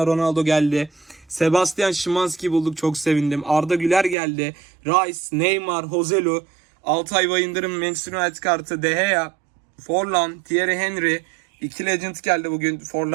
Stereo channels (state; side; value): drops out; left; at 4.2 s